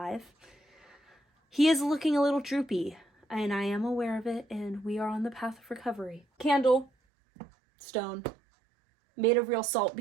He is looking a little droopy, and I am aware of it, and we are on the path of recovery. Candle, stone, made of real salt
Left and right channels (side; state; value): left; drops out; at 6.9 s